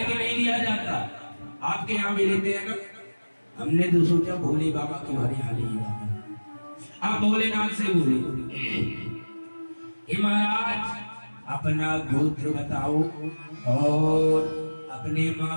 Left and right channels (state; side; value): inverted; both; correlation -1.00